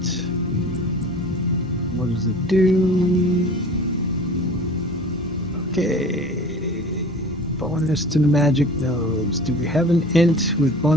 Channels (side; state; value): both; normal; correlation 0.41